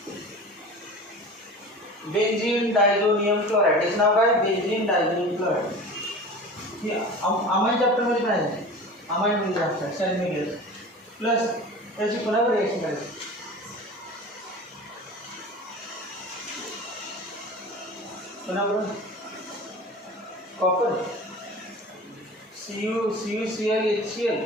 Benzene diazonium chloride. याचं नाव काय? Benzene diazonium chloride. हे अमाइन चॅप्टर मध्ये काय आहे? अमाइन मध्ये असतात सॅल्मियस प्लस त्याची पुन्हा रिएक्शन करायची. पुन्हा बघा कॉपर CuCl HCl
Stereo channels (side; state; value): both; normal; correlation 0.36